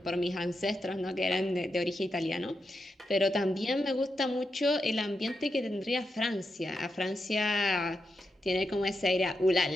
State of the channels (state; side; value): normal; both; correlation 0.86